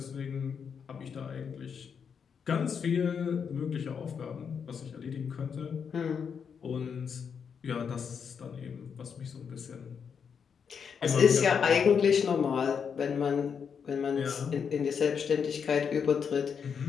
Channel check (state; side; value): quieter; right; 6.7 dB